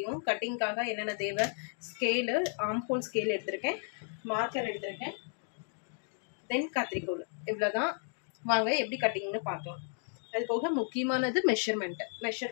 கட்டிங்காக என்னென்ன தேவை. ஸ்கேலு, ஆம்ஹோல் ஸ்கேல் எடுத்திருக்கேன், மார்க்கர் எடுத்திருக்கேன், தென் கத்திரிக்கோல். இவ்வளோதான். வாங்க எப்படி கட்டிங்னு பார்க்கலாம். அது போக முக்கியமானது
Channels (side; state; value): right; silent; 55 dB below the other